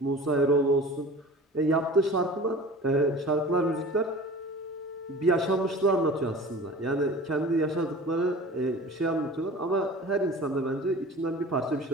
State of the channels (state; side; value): normal; both; correlation 0.40